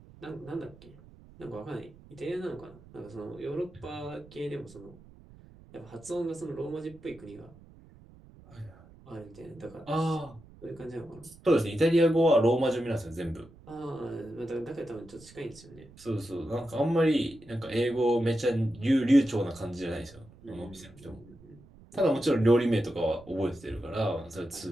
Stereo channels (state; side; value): noise; right; rumble, 22 dB below the sound